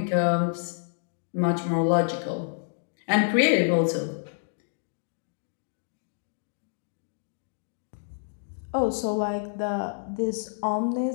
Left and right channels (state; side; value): silent; right; digital silence